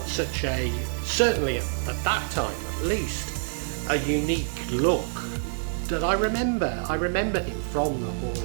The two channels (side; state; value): left; silent; digital silence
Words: such a, certainly at that time at least, a unique look that I remember him from the